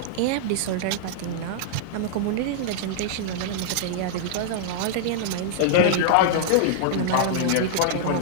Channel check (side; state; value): both; different; correlation -0.01